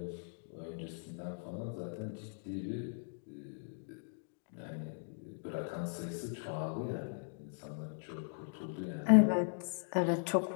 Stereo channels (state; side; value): silent; right; digital silence